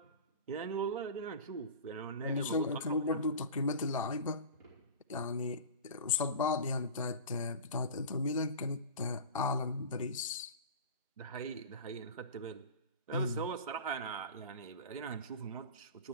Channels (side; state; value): both; inverted; correlation -0.33